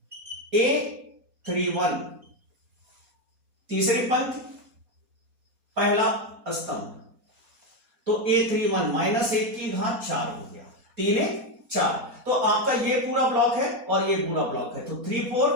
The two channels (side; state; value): left; late; 4.2 ms